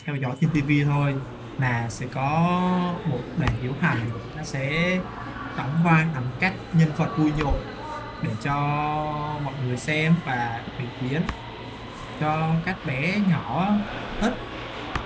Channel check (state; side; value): identical; both; correlation 1.00